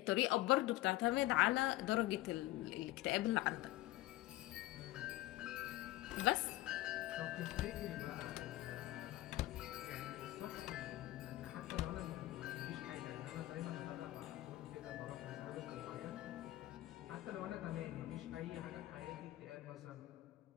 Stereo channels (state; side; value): quieter; right; 16.8 dB